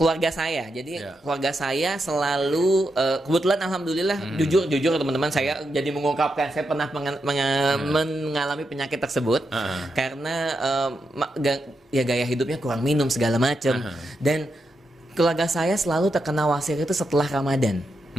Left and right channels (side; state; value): both; normal; correlation 0.85